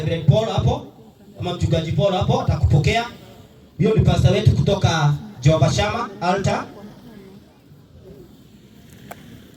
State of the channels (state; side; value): identical; both; correlation 1.00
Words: Paul hapo. Ama mchungaji Paul hapo atakupokea. Huyo ni pastor wetu kutoka Jehovah Shammah Altar.